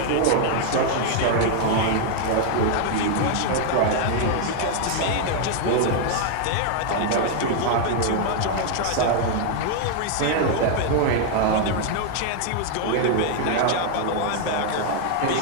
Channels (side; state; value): both; different; correlation 0.00